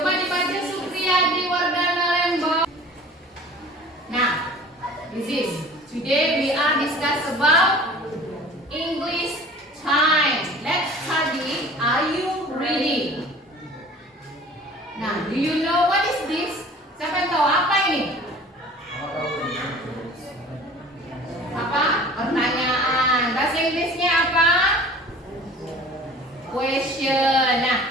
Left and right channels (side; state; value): both; normal; correlation 0.45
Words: dibaca Supriyadi Wardana Lembong. Nah, this is today we are discuss about English time. Let's study. Are you ready? Nah, do you know what is this? Siapa yang tahu apa ini? Apa? Pertanyaan. Bahasa Inggrisnya apa? Question. Nah,